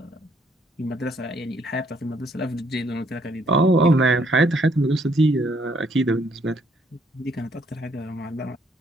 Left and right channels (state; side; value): normal; both; correlation 0.68